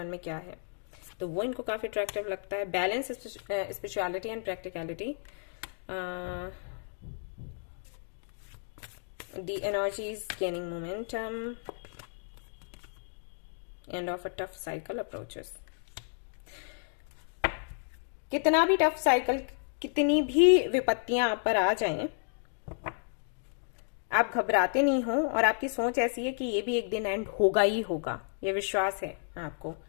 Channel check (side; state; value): right; silent; digital silence